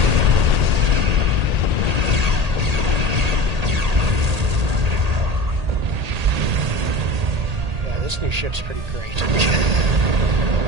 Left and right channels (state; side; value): late; left; 1.8 ms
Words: This new ship's pretty great.